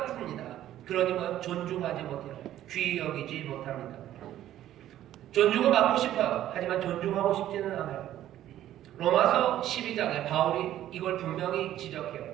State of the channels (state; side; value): quieter; left; 12.6 dB